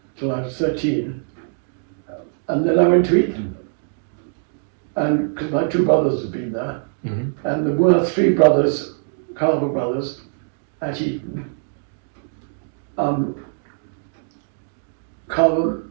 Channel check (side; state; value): left; silent; digital silence